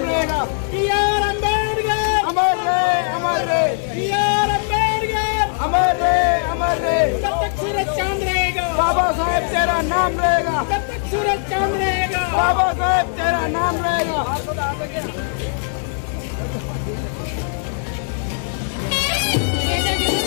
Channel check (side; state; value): right; silent; digital silence